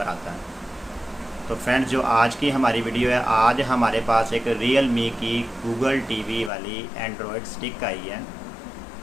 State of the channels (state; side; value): drops out; right; at 6.5 s